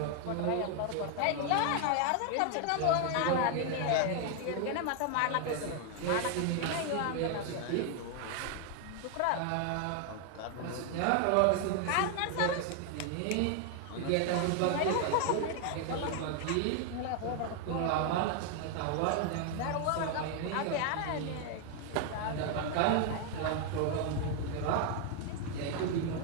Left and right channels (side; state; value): both; different; correlation 0.00